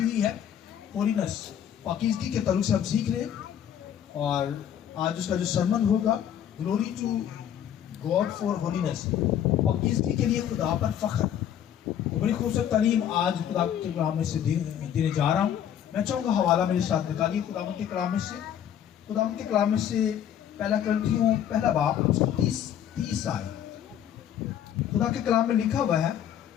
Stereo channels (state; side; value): quieter; right; 9.8 dB